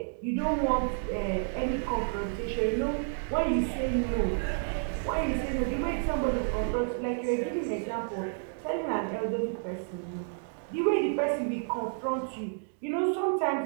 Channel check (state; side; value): silent; left; digital silence